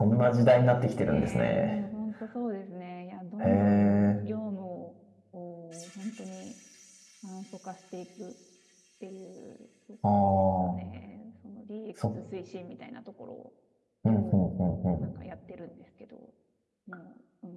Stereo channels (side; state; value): both; identical; correlation 1.00